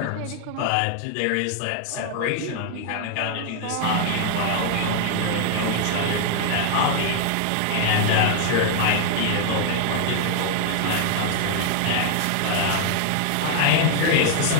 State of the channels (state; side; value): different; both; correlation 0.00